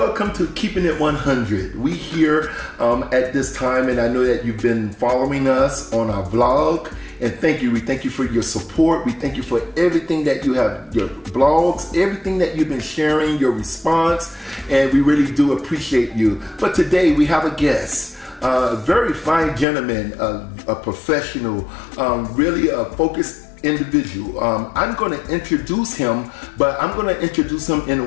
to Keeping It 100. We here at this time, and I know that you've been following us on our vlog. And thank you. We thank you for your support. We thank you for everything that you have, your blogs, everything that you've been sharing, your response. And we really do appreciate you. But today we have a guest. A very fine gentleman, a professional, really a focused individual. I'm going to introduce him, but I'm going to introduce him in a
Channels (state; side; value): drops out; right; at 19.7 s